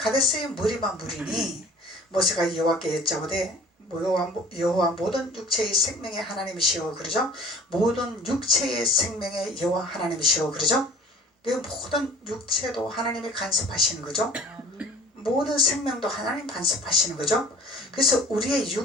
물이만 물이니 모세가 여호와께 여짜오되 여호와 모든 육체의 생명의 하나님이시오 그러죠. 모든 육체의 생명의 여호와 하나님이시오 그러죠. 모든 육체도 하나님이 간섭하시는 거죠. 모든 생명도 하나님 간섭하시는 거죠. 그래서 우리의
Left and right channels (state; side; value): normal; both; correlation 0.45